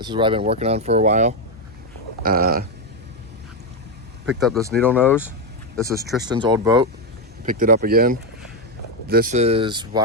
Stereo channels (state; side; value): normal; both; correlation 0.05